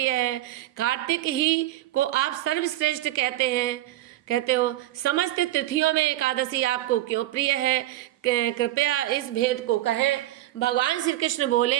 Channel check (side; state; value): left; quieter; 15.2 dB